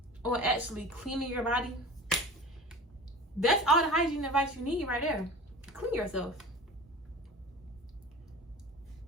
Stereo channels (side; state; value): both; normal; correlation 0.38